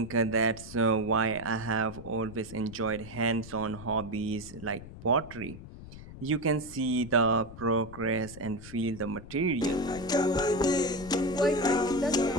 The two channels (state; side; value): noise; left; rumble, 15 dB below the sound